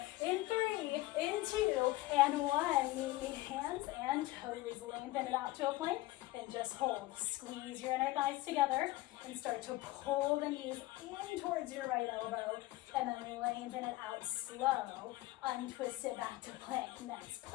in 3, in 2, and 1. Meet hands and toes. Lengthen it out to a plank and just hold. Squeeze your inner thighs together and start to pull the knees in towards your right elbow, and then lengthen it out slow. Untwist it back to plank. Next,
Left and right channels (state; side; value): quieter; right; 18.1 dB